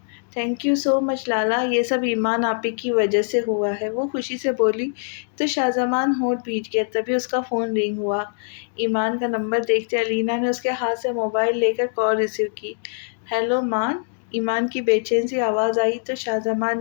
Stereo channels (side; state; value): right; silent; digital silence